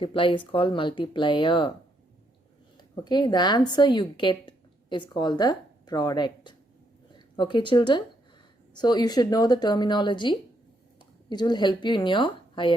is called multiplier. Okay, the answer you get is called the product. Okay children, so you should know the terminology. It will help you in your higher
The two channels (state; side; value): normal; both; correlation 0.75